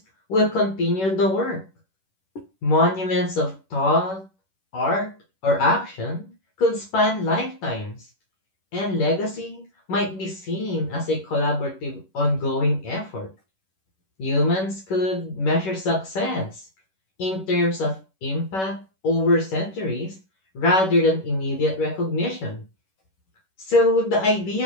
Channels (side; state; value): right; late; 11 ms